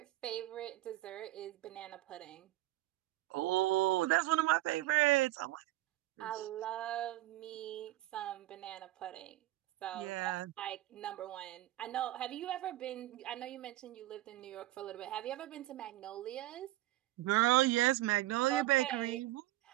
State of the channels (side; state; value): left; quieter; 16.9 dB